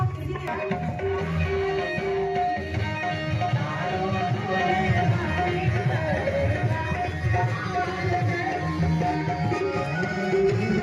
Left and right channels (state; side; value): identical; both; correlation 1.00